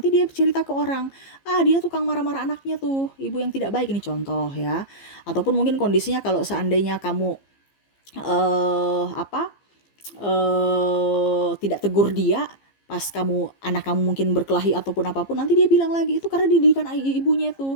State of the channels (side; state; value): right; late; 15 ms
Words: dia cerita ke orang, dia tukang marah-marah anaknya tuh, ibu yang tidak baik. Ini contoh ya. Ataupun mungkin kondisinya kalau seandainya kamu apa tidak tegur dia, pas anak kamu mungkin berkelahi ataupun apapun, nanti dia bilang lagi itu karena didikan ibunya